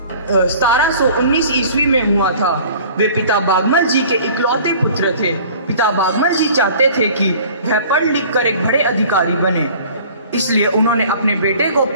1719 ईस्वी में हुआ था। वे पिता बागमल जी के इकलौते पुत्र थे। पिता बागमल जी चाहते थे कि वह पढ़ लिख कर एक बड़े अधिकारी बने, इसलिए उन्होंने अपने बेटे को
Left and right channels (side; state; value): both; inverted; correlation -0.48